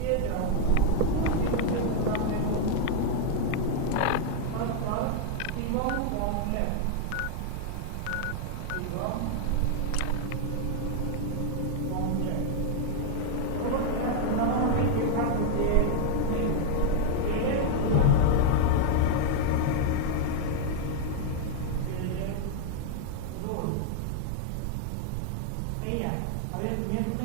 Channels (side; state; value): both; different; correlation 0.00